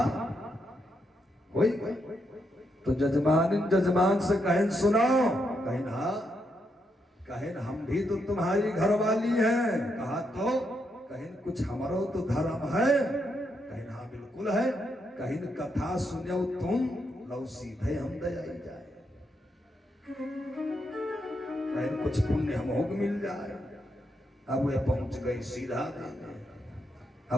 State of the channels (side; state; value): both; normal; correlation 0.80